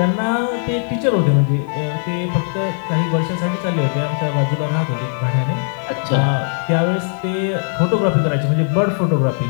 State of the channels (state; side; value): silent; right; 67 dB below the other